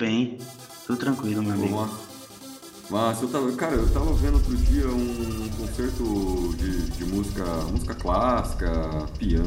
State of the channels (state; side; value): identical; both; correlation 1.00